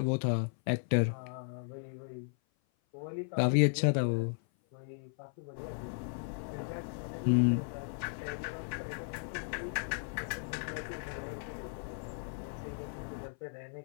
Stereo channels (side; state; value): right; silent; 54 dB below the other